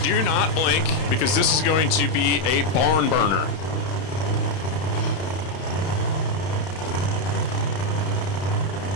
do not blink, because this is going to be a barn burner.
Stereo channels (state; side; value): late; right; 31 ms